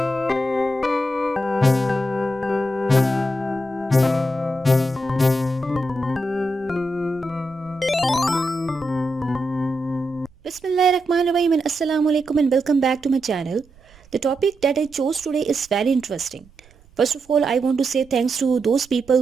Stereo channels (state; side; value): noise; right; rumble, 28 dB below the sound